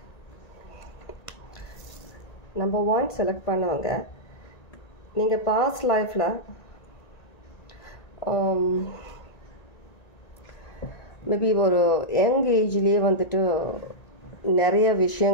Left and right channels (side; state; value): right; late; 1.9 ms